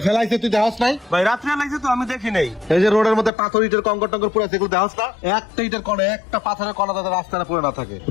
ফেলাইছে, তুই দেখাস নাই? ভাই রাত্রে লাগছে তো, আমি দেখি নাই। এই যে রোডের মধ্যে পাথর ইটের কঙ্কর টঙ্কর পুরো সেগুলো দেখাস না? একটা ইটের কোণে একটা পাথরের কণা যাতে রাস্তাটা পুরো না থাকে,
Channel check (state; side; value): drops out; right; at 3.3 s